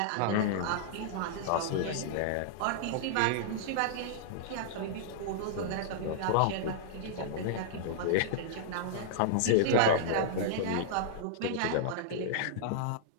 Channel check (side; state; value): both; different; correlation -0.02